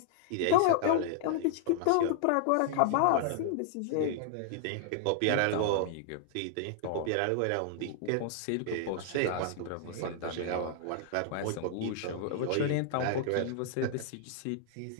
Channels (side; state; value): both; different; correlation -0.01